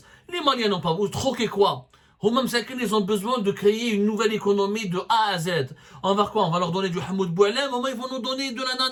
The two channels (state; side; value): identical; both; correlation 1.00